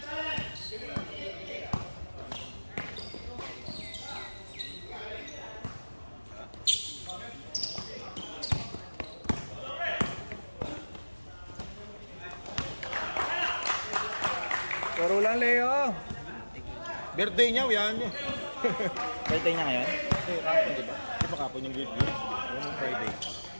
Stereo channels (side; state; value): both; inverted; correlation -1.00